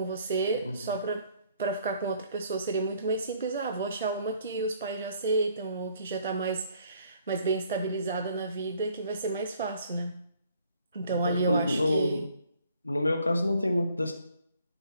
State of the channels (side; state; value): both; inverted; correlation -0.62